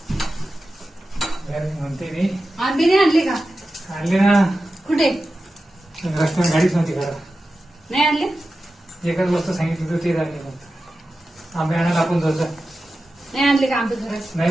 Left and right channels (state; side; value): normal; both; correlation 0.93